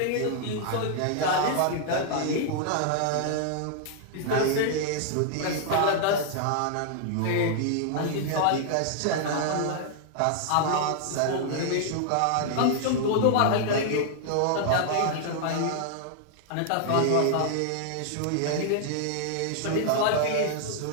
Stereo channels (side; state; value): both; different; correlation 0.00